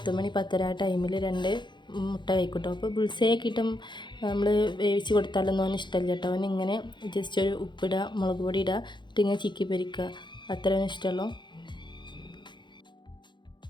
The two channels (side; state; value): right; late; 0.22 ms